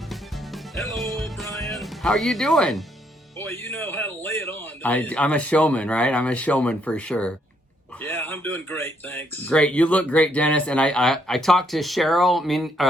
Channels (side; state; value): both; normal; correlation 0.72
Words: Hello, Brian. How are you doing? Boy, you know how to lay it on. I'm a showman, right? I'm a showman for sure. Yeah, I'm doing great, thanks. Great. You look great, Dennis. And I talked to